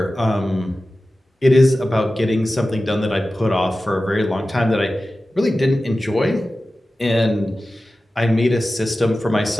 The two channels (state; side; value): normal; both; correlation 0.95